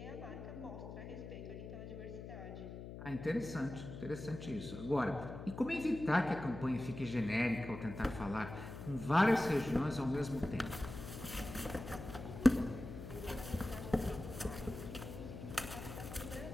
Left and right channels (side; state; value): left; noise; hum, 10 dB below the sound